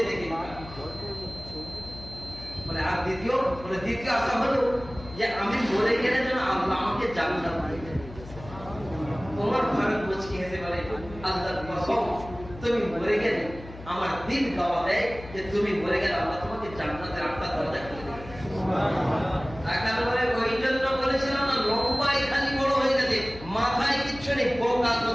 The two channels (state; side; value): noise; left; hum, 15 dB below the sound